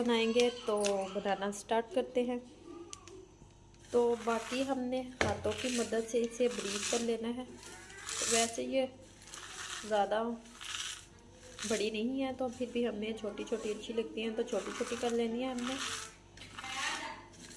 तो बनाना स्टार्ट करते हैं। तो बाकी हमने हाथों की मदद से इसे ब्रीक कर लेना है। तो वैसे ये ज़्यादा बड़ी नहीं है, तो फिर भी हमें छोटी छोटी अच्छी लगती हैं, तो छोटी छोटी कर लेनी है हमने।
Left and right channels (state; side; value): identical; both; correlation 1.00